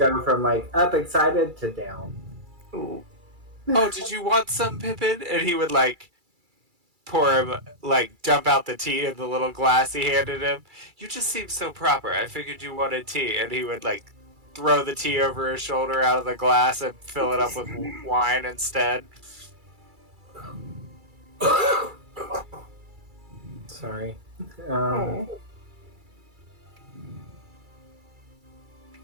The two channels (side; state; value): left; late; 2.3 ms